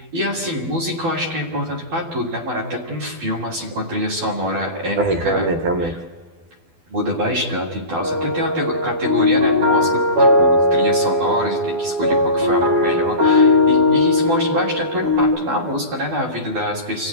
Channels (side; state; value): left; late; 12 ms